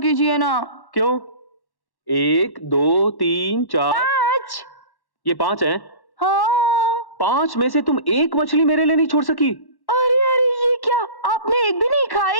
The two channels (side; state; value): right; late; 1.1 ms